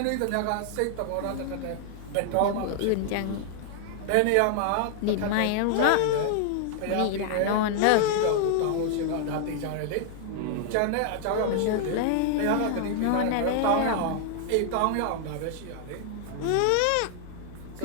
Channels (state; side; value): different; both; correlation -0.01